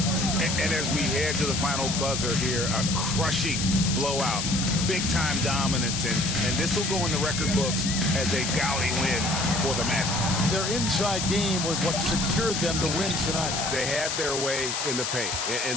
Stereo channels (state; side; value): noise; left; hiss, 2 dB below the sound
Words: And as we head to the final buzzer here, a crushing blowout. Big-time dominance, and this will go in the record books as a gaudy win for the Magic. Their inside game was what secured them to win tonight. They had their way in the paint,